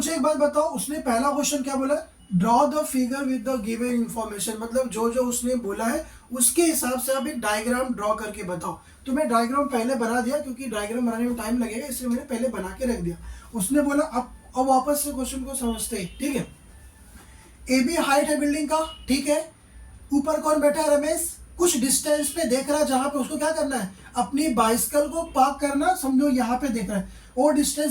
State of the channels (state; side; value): identical; both; correlation 1.00